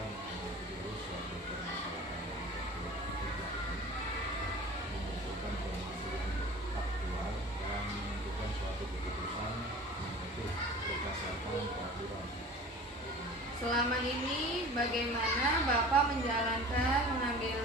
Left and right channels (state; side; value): normal; both; correlation 0.41